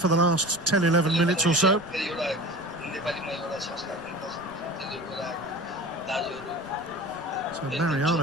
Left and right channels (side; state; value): right; noise; rumble, 24 dB below the sound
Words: the last 10-11 minutes or so. So